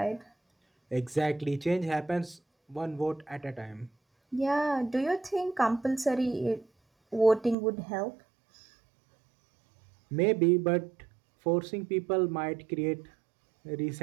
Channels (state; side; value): drops out; left; at 7.6 s